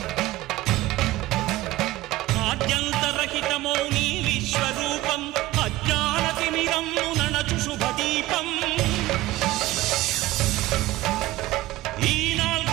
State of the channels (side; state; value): left; quieter; 17.4 dB